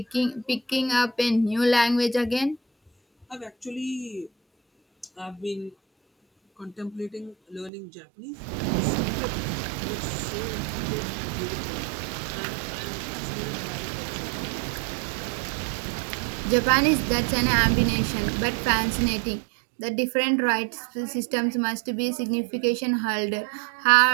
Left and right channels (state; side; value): drops out; left; at 7.7 s